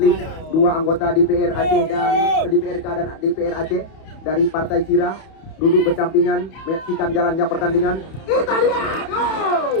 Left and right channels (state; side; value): late; right; 31 ms